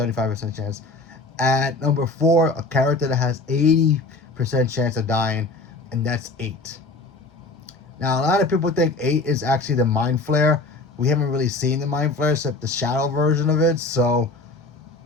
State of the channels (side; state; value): right; quieter; 3.3 dB